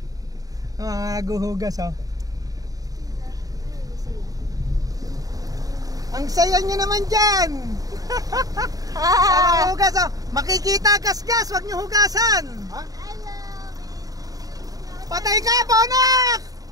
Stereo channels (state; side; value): late; left; 0.18 ms